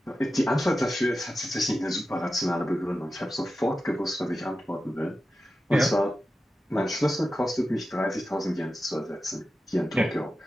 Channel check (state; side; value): normal; both; correlation 0.92